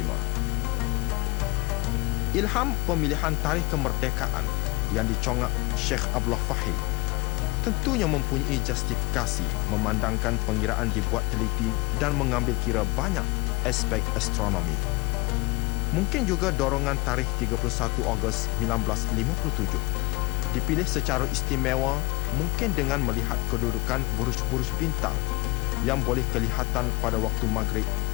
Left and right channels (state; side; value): quieter; right; 24.2 dB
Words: Ilham pemilihan tarikh kemerdekaan yang dicongak Syekh Abdullah Fahim tentunya mempunyai justifikasi memandangkan pengiraan dibuat teliti dan mengambil kira banyak aspek astronomi. Mungkin juga dorongan tarikh 31 Ogos 1957 dipilih secara istimewa, mungkin dengan melihat kedudukan buruj-buruj bintang yang boleh kelihatan pada waktu maghrib